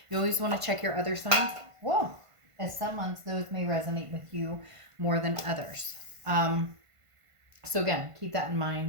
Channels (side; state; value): left; late; 1.5 ms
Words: You always want to check your other signs. Whoa. As some months, those may resonate with you more than others. So again, keep that in